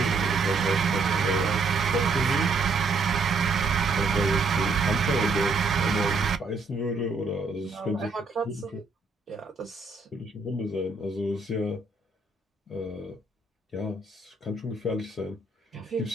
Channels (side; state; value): left; quieter; 3.8 dB